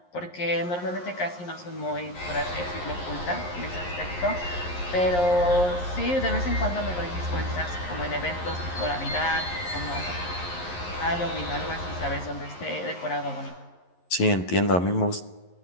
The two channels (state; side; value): late; right; 11 ms